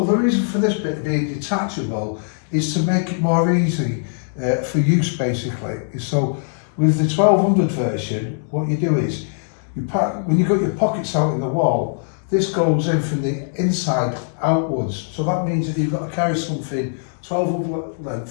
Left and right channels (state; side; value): silent; right; digital silence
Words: the reason for this bit being detachable is to make it more easy for use basically. So with the 1200 version, what you do is, when you've got your pockets out in the wall, this goes in from the inside outwards. So that means that you've got to carry something 1200